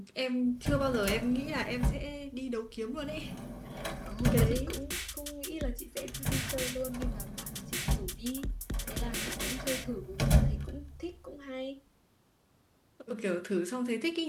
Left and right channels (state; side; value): identical; both; correlation 1.00